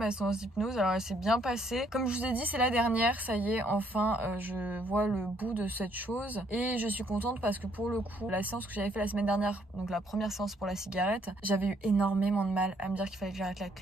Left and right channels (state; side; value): normal; both; correlation 0.68